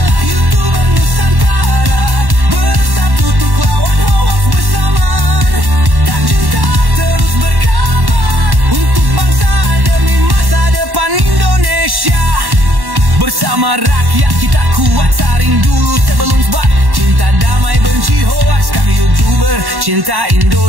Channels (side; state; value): left; late; 1.1 ms